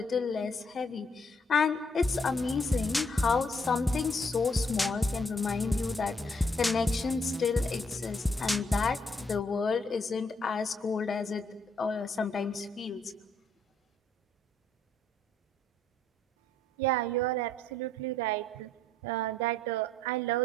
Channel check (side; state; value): both; normal; correlation 0.69